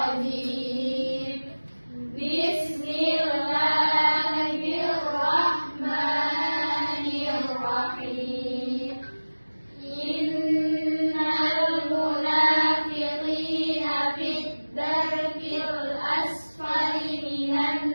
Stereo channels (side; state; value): both; inverted; correlation -1.00